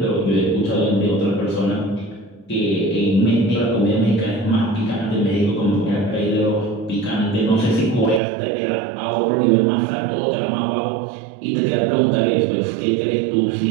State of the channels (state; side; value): drops out; left; at 8.2 s